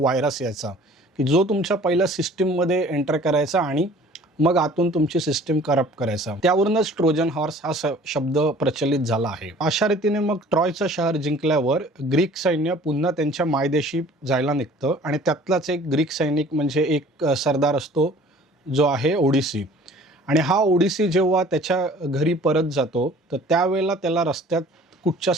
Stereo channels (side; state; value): both; normal; correlation 0.50